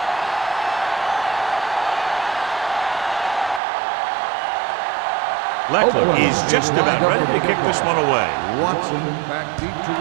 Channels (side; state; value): left; drops out; at 3.6 s